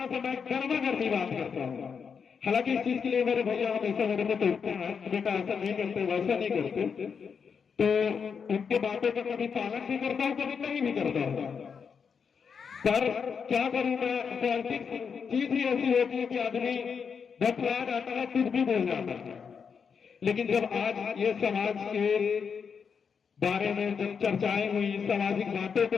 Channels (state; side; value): quieter; right; 6.3 dB